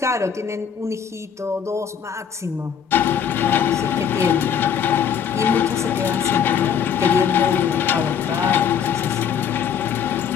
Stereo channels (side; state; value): right; quieter; 7.8 dB